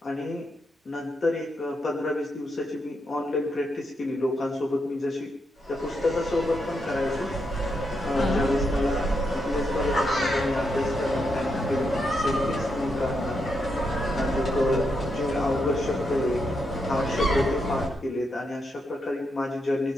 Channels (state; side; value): normal; both; correlation 0.82